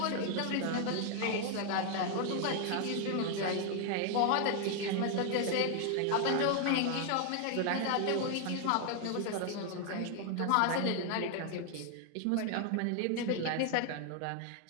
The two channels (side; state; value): both; different; correlation 0.00